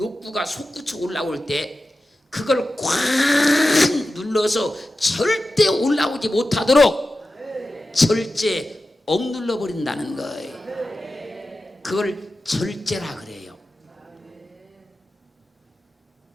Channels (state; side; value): normal; both; correlation 0.93